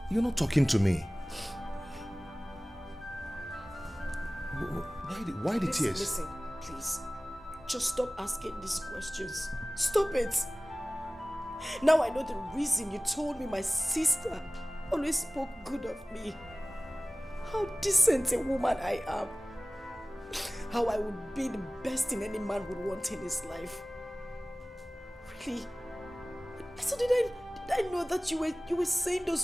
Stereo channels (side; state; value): both; normal; correlation 0.98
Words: You're not talking to me. Why the tears? Listen, please. Just stop asking these questions. Stop it. Now I know the reason you told me my sister always spoke good of me. How decent a woman I am. How I would be the best thing any man would want in his life. Really? So did I know that you were saying